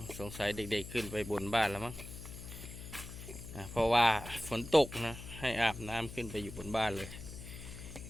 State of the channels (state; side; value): noise; left; hum, 11 dB below the sound